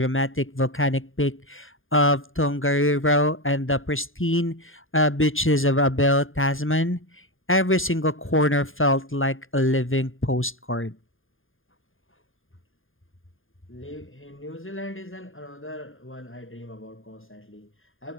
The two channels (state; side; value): late; right; 0.59 ms